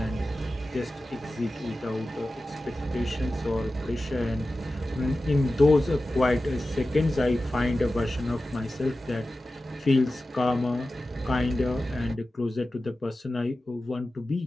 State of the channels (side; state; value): both; normal; correlation 0.94